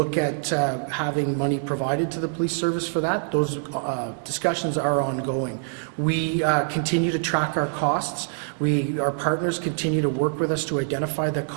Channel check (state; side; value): silent; left; digital silence